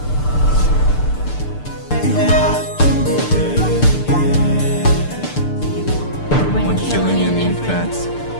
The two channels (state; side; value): late; right; 6.8 ms